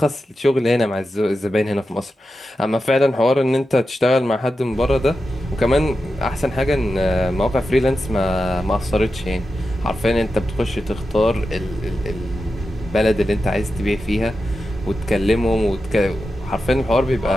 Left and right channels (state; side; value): normal; both; correlation 0.90